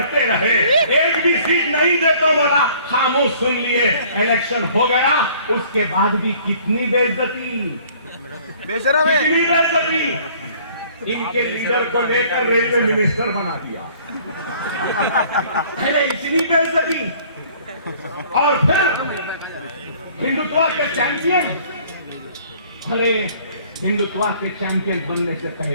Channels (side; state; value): both; inverted; correlation -0.55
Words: रहे। एक भी सीट नहीं देता बोला, खामोश सुन लिए। इलेक्शन हो गया, उसके बाद भी कितनी बेइज्जती, कितनी बेइज्जती। इनके लीडर को लेकर रेलवे मिनिस्टर बना दिया, अरे इतनी बेइज्जती। और फिर हिंदुत्व के चैंपियन, अरे हिंदुत्व के चैंपियन बनने से